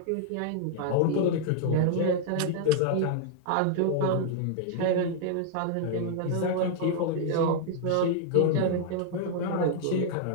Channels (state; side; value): different; both; correlation -0.01